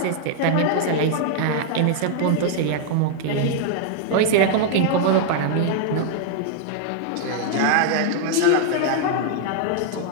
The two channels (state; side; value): different; both; correlation 0.00